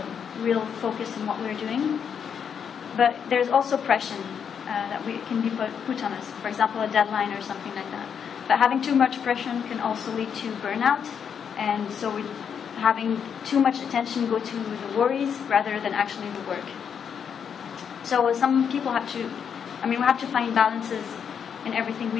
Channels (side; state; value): right; quieter; 7.4 dB